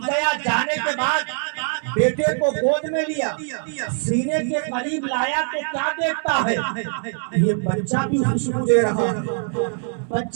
گیا، جانے کے بعد بیٹے کو گود میں لیا، سینے کے قریب لایا تو کیا دیکھتا ہے؟ یہ بچہ بھی خوشبو دے رہا ہے،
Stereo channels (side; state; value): left; silent; 63 dB below the other